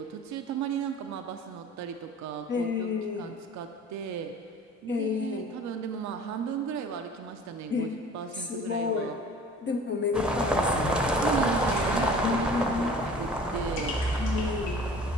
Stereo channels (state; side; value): normal; both; correlation 0.45